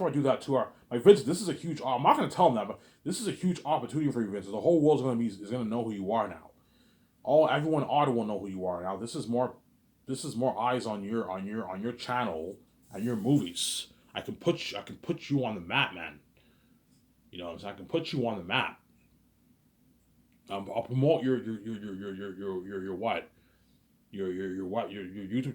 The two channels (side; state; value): both; identical; correlation 1.00